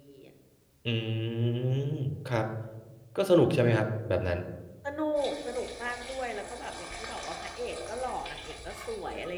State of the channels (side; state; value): both; identical; correlation 1.00